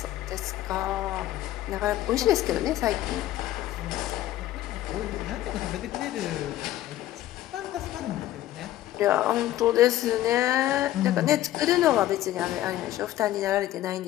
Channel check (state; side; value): quieter; right; 14.1 dB